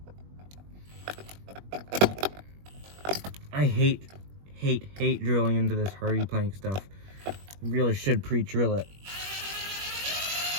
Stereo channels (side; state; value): left; late; 21 ms